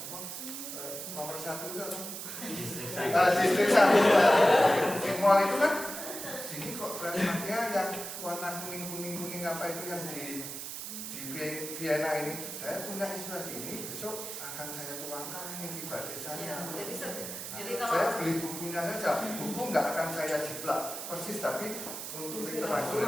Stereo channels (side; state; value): right; noise; hiss, 7 dB below the sound